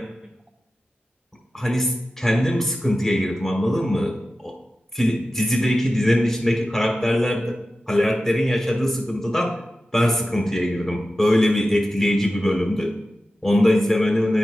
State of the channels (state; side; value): normal; both; correlation 0.94